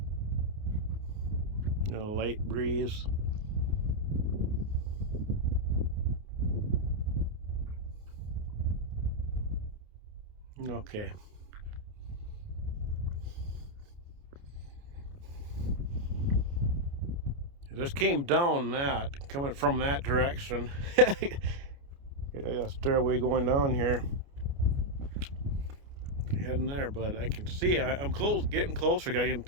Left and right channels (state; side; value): late; left; 29 ms